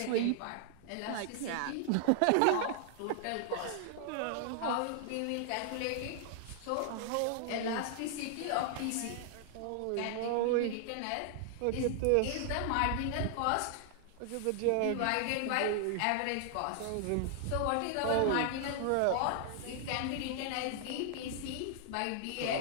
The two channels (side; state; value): both; different; correlation 0.00